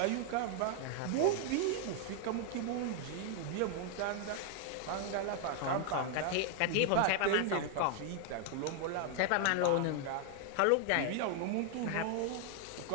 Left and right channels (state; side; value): different; both; correlation 0.00